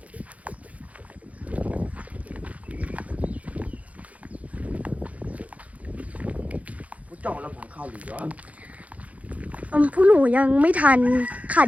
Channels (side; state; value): left; late; 0.068 ms